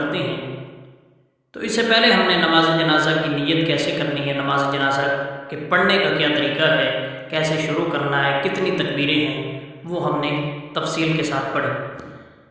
हैं। तो इससे पहले हमने नमाज जनाजा की नीयत कैसे करनी है, नमाज जनाजा के पढ़ने का क्या तरीका है, कैसे शुरू करना है, कितनी तकबीरें हैं, वो हमने तफसील के साथ पढ़ी।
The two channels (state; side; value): identical; both; correlation 1.00